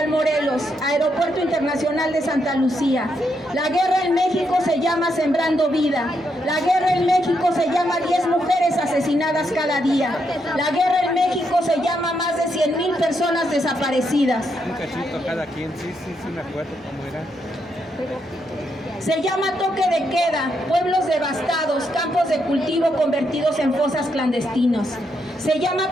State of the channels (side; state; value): both; normal; correlation 0.79